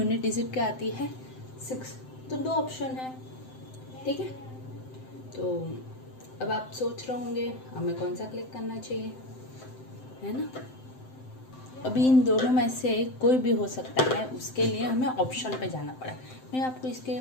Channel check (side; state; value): right; late; 7.8 ms